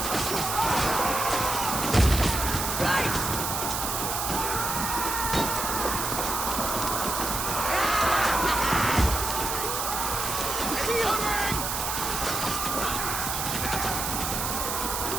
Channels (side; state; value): right; noise; hiss, 2 dB below the sound